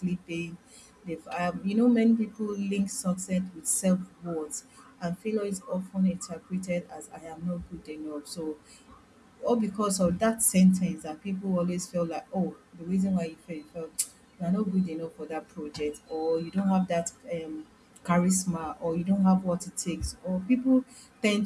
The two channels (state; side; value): identical; both; correlation 1.00